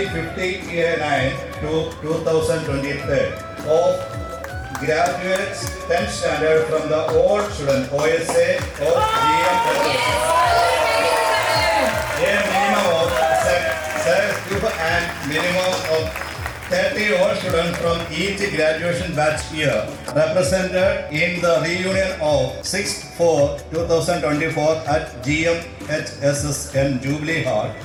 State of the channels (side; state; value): both; identical; correlation 1.00